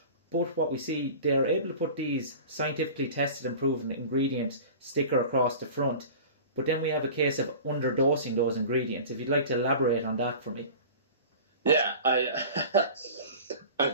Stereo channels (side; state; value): both; inverted; correlation -0.38